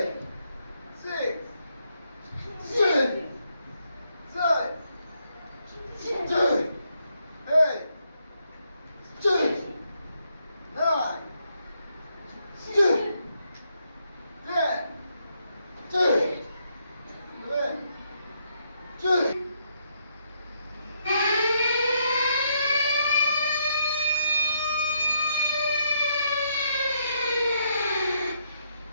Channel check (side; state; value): both; inverted; correlation -0.77